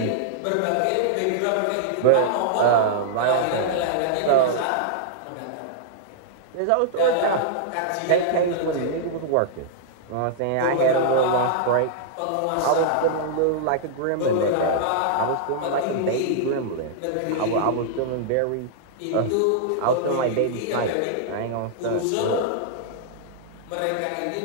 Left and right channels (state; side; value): different; both; correlation -0.01